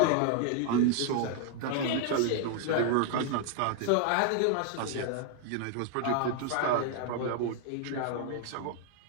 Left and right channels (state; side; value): different; both; correlation 0.00